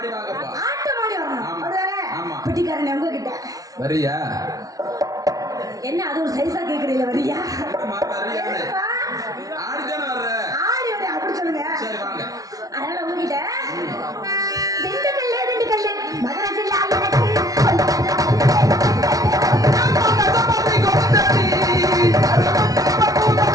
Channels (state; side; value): late; left; 0.18 ms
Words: வாங்கப்பா ஆட்டம் ஆடி வரணும் ஆமா. அதுதானே ஆமா. பிட்டிக்காரன் உங்ககிட்ட வரியா என்ன அது ஒரு சைஸா கேக்குறீங்க வரியா வரியானே ஆடிதானே வர்ற ஆடி வந்து அப்படி சொல்லுங்க சரி வாங்க அதனால உங்ககிட்ட திண்டுக்கல்ல மகராஜில் எனக்கு